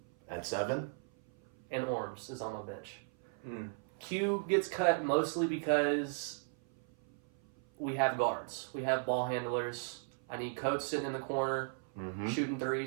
At 7? And Orms is on my bench. Mm. Q gets cut mostly because we have guards. We have ball handlers. I need Coates sitting in the corner, shooting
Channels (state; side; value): silent; left; 53 dB below the other